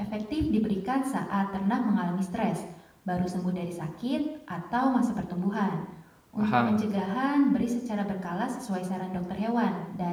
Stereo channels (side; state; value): both; identical; correlation 1.00